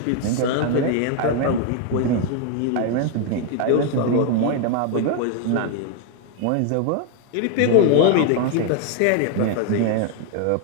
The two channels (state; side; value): different; both; correlation 0.00